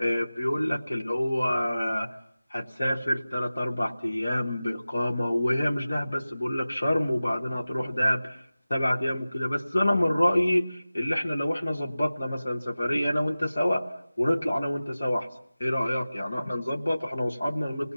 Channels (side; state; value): both; inverted; correlation -0.96